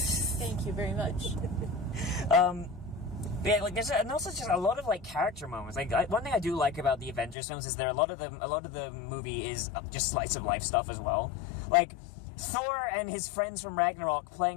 you very much. Yeah, like there's also just a lot of like character moments. Like one thing I do like about the Avengers films is a lot of the movie is just slice of life stuff as well. Like Thor and his friends from Ragnarok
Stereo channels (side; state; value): right; drops out; at 7.4 s